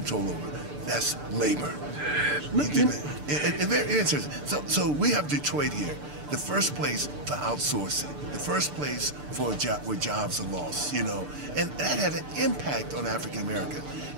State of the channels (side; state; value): left; late; 6.8 ms